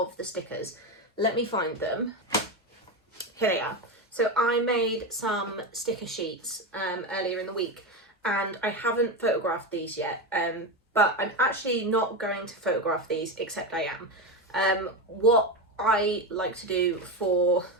the stickers. Let me find them. Here they are. So I made some sticker sheets earlier in the week, and I haven't photographed these yet, but I'm actually not going to photograph these, except I am. What I like to do for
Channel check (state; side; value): normal; both; correlation 0.15